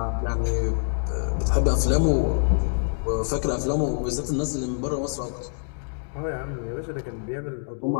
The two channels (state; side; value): silent; right; digital silence